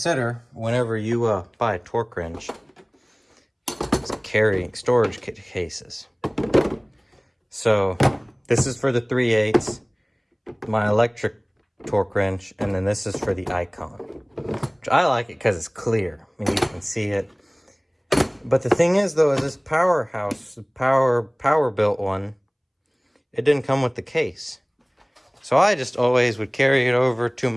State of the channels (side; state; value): both; identical; correlation 1.00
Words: whenever you buy a torque wrench is carrying storage cases. So this is for the 3/8, my electric torque wrench, and then this is for the Icon. Which I like it because it's clear. I mean, you can see it. But the thing is, though, is this Powerhouse, power built one, it didn't come with the case. So I just always would carry it over to